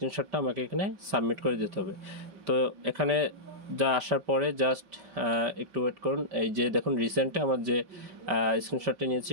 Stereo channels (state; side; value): late; left; 5.1 ms